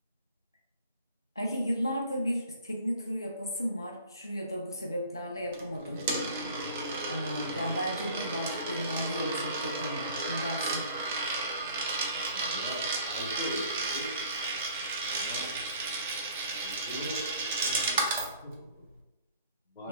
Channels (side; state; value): both; inverted; correlation -0.50